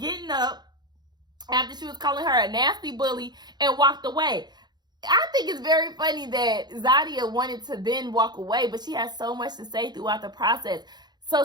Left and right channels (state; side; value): late; left; 0.20 ms